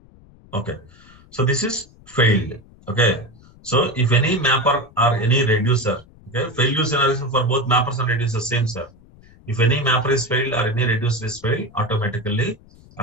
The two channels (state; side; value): noise; left; rumble, 25 dB below the sound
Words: Okay. So this is failed. Okay. So if any mapper or any reducer, okay, failure scenario for both mappers and reducers same, sir. If any mapper is failed or any reducer is failed, automatically